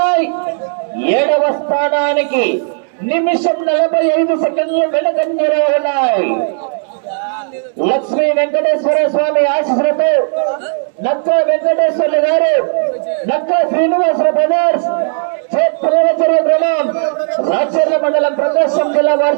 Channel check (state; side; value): silent; left; digital silence